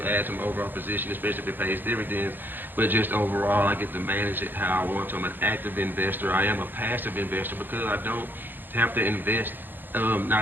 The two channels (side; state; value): left; late; 0.092 ms